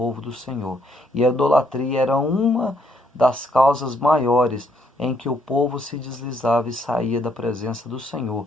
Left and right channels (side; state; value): both; normal; correlation 0.71